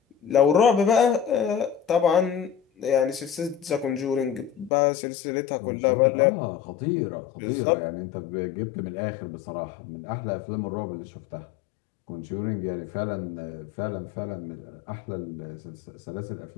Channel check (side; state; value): right; drops out; at 4.7 s